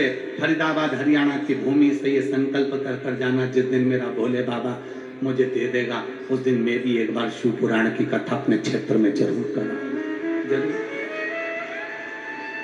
फरीदाबाद हरियाणा की भूमि से ये संकल्प कर जाना, जिस दिन मेरा भोले बाबा मुझे दे देगा, उस दिन मैं भी एक बार शिव पुराण की कथा अपने क्षेत्र में जरूर करूंगा, जरूर।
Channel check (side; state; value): both; identical; correlation 1.00